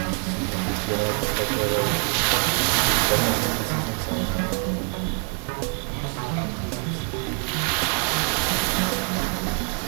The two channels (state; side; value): quieter; left; 36.6 dB